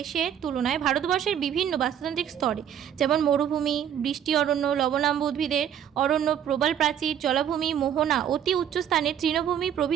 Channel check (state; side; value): quieter; left; 9.4 dB